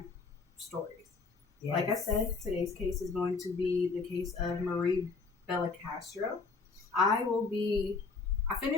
stories. Yes. Like I said, today's case is going to be the case of Marie Belcastro. I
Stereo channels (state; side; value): quieter; right; 4.4 dB